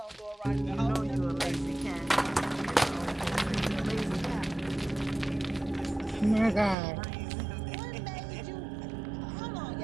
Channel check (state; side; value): drops out; left; at 6.8 s